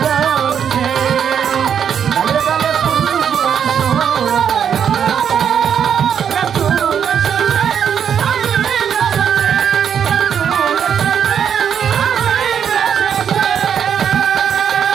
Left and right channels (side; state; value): left; quieter; 8.1 dB